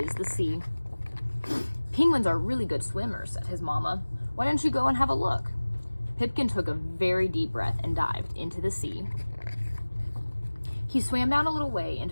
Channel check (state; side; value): inverted; both; correlation -1.00